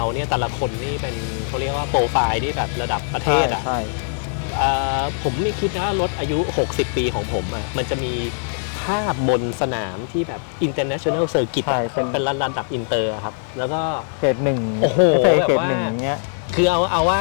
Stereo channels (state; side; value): silent; right; digital silence